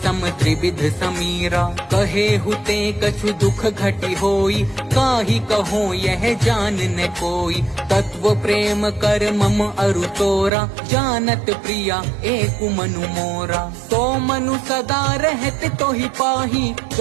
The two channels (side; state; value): left; drops out; at 10.5 s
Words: सम त्रिविध समीरा। कहे हुते कछु दुख घटी होई, काहि कहो यह जान न कोई। तत्व प्रेम कर मम अरु तोरा, जानत प्रिया एक मनु मोरा। सो मनु सदा रहत तो ही पाही,